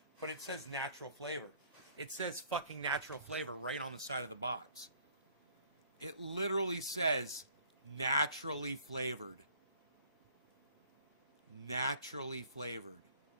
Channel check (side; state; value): both; inverted; correlation -0.59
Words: But it says natural flavor. It says fucking natural flavor right on the side of the box. It literally says naturally flavored. Naturally flavored.